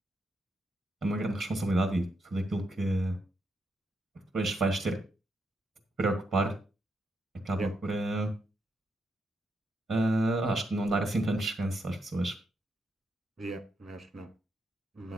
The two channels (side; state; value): both; normal; correlation 0.81